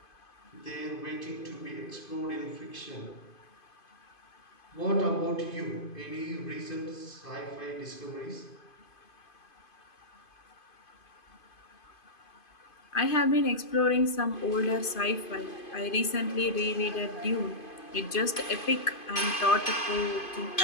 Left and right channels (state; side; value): late; right; 2.5 ms